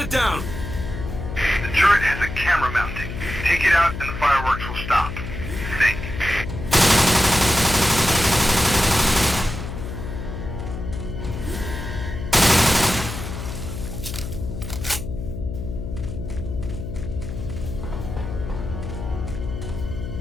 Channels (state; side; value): noise; left; hum, 7 dB below the sound